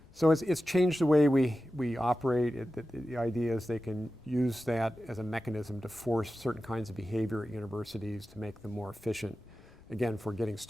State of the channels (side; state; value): left; noise; rumble, 27 dB below the sound